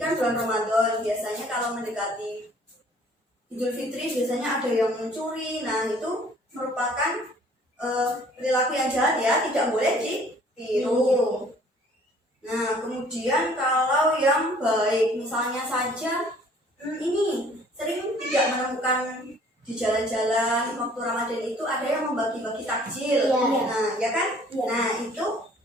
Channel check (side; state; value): both; normal; correlation 0.55